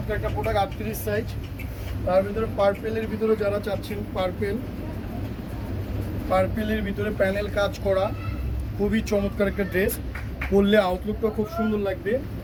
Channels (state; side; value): identical; both; correlation 1.00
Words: একটা প্রোডাক্ট। 38 সাইজ, তার ভিতরে পার্পেলের ভিতরে যারা চাচ্ছেন, পার্পেলের ভিতরে প্যানেল কাজ করা, খুবই চমৎকার একটা ড্রেস। পরলে আউটলুকটা খুব সুন্দর লাগবে।